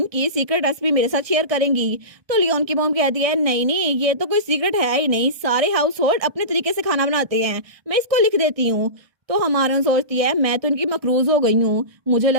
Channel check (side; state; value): left; late; 1.6 ms